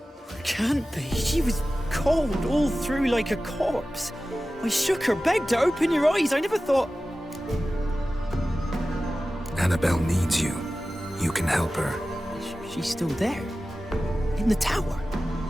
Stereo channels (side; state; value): both; normal; correlation 0.95